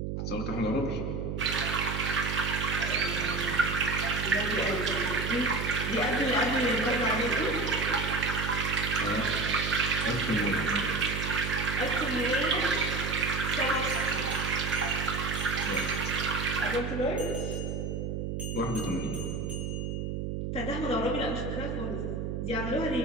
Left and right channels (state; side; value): noise; right; hum, 3 dB below the sound